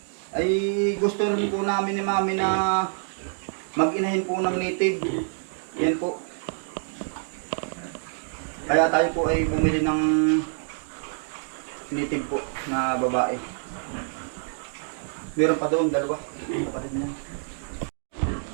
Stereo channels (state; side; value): silent; left; digital silence